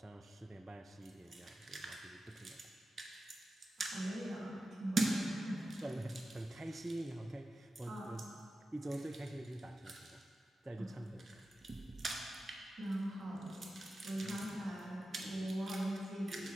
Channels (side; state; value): both; normal; correlation 0.93